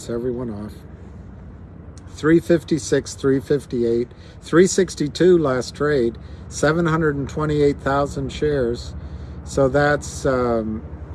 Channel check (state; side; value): identical; both; correlation 1.00